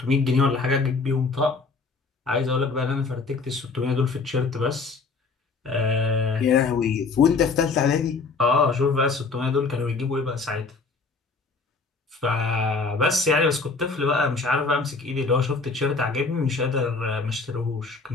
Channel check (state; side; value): quieter; right; 4.3 dB